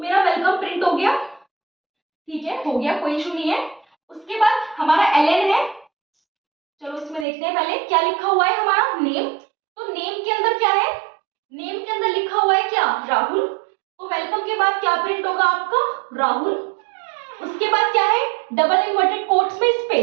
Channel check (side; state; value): left; drops out; at 7.2 s